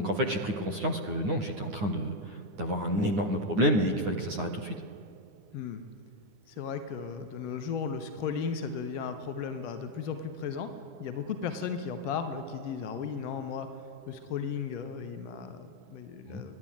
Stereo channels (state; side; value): late; left; 9.7 ms